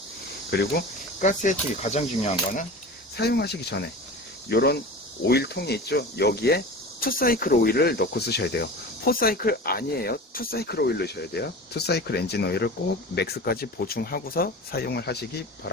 그리고 가스 예초기 가장 중요한 거는 사용하시기 전에 요런 오일통이 있죠. 여기에 2사이클 오일을 넣고 쓰셔야 돼요. 4사이클 아니에요. 2사이클 오일 넣으셔야 돼요. 2사이클 엔진 오일을 꼭 맥스까지 보충하고서 사용을 하시기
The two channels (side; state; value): both; normal; correlation 0.34